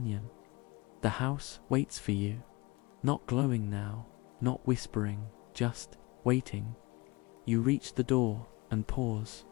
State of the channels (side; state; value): right; quieter; 24.2 dB